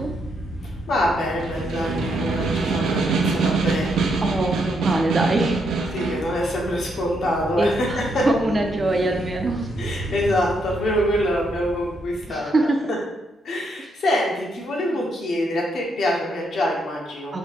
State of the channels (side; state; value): both; normal; correlation 0.77